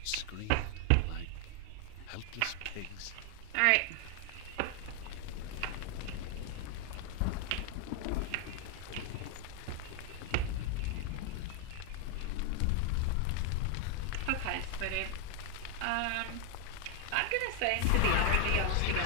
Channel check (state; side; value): different; both; correlation 0.00